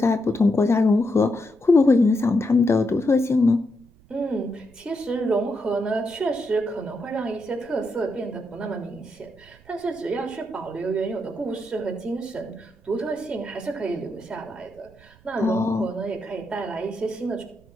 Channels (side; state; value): right; noise; rumble, 27 dB below the sound